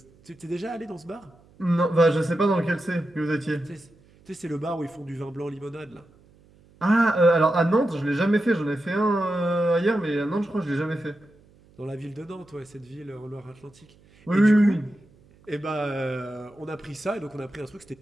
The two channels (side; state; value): right; noise; hum, 29 dB below the sound